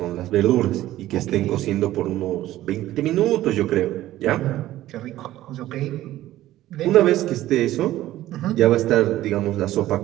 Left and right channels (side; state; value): left; quieter; 14.7 dB